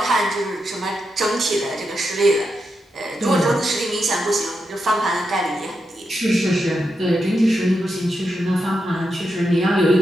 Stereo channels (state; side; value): normal; both; correlation 0.85